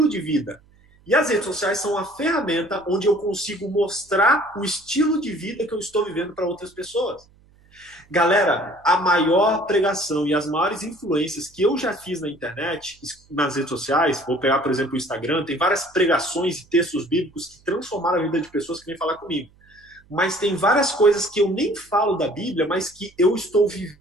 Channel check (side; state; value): right; noise; hum, 30 dB below the sound